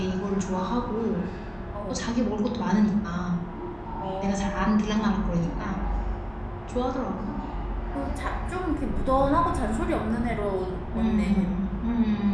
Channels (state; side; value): identical; both; correlation 1.00